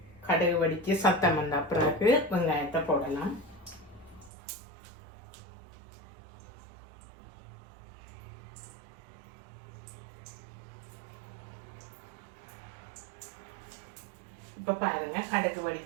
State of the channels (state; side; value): drops out; left; at 4.3 s